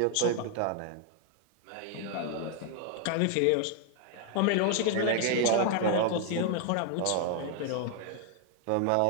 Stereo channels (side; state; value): both; different; correlation 0.00